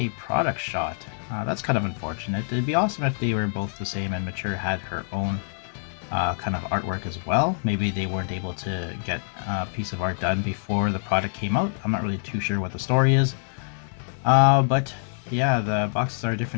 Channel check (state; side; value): silent; right; digital silence